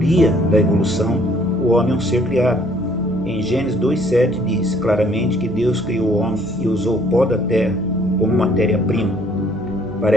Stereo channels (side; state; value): both; normal; correlation 0.61